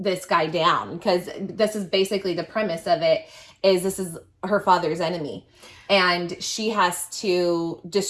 guy down because this is basically the premise of it is this is her father's enemy and she has to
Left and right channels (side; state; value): both; identical; correlation 1.00